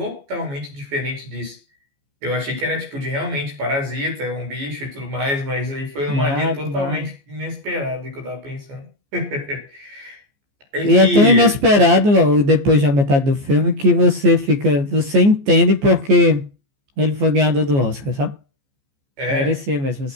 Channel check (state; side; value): late; left; 14 ms